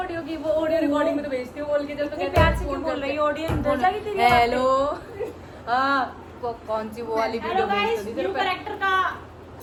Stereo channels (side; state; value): both; identical; correlation 1.00